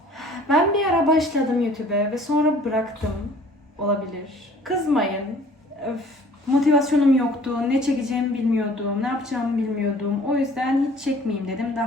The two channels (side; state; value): both; normal; correlation 0.52